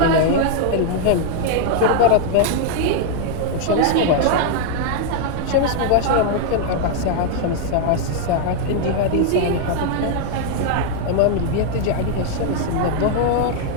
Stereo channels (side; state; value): both; different; correlation -0.01